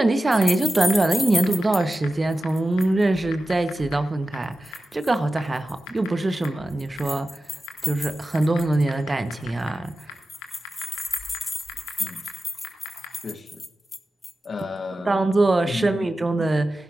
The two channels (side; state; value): both; normal; correlation 0.94